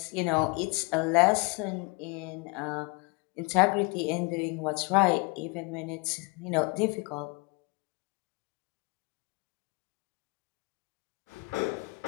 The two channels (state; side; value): quieter; right; 29.4 dB